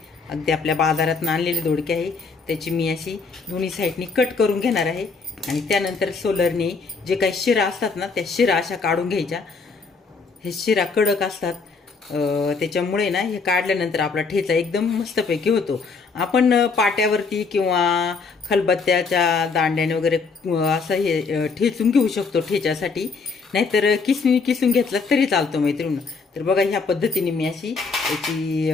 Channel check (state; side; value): quieter; right; 4.6 dB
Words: अगदी आपल्या बाजारात आणलेले दोडके आहे. त्याची मी अशी दोन्ही साईडनी कट करून घेणार आहे आणि त्यानंतर सोलरने जे काही शिरा असतात ना, त्या शिरा अशा काढून घ्यायच्या. हे शिरा कडक असतात, त्याच्यामुळे ना हे काढल्यानंतर आपला ठेचा एकदम मस्तपैकी होतो. आपण पाट्यावरती किंवा खलबत्त्याच्या दांड्याने वगैरे असं हे ठेचून घेऊ शकतो ठेच्यासाठी, नाहीतर किसणी किसून घेतला तरी चालतो मैत्रिणी. तर बघा, ह्या पद्धतीने मी अशी याची